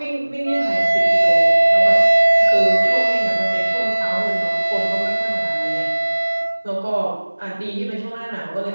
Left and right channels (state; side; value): inverted; both; correlation -1.00